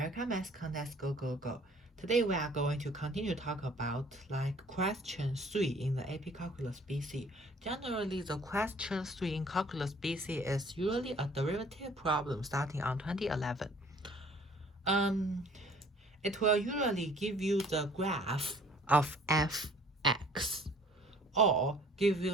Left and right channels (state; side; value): normal; both; correlation 0.55